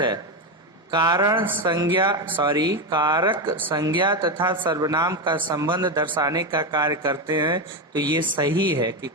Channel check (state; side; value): normal; both; correlation 0.12